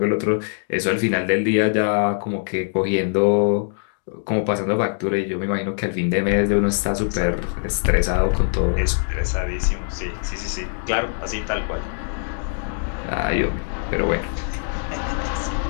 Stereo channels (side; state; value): right; silent; digital silence